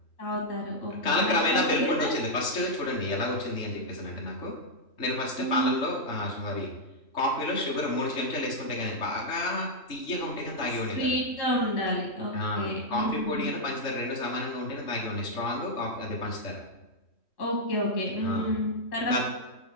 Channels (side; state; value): right; late; 3.1 ms